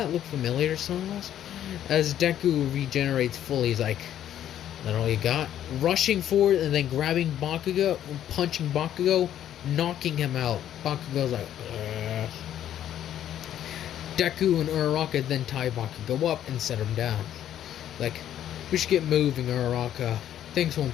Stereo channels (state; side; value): quieter; right; 11.0 dB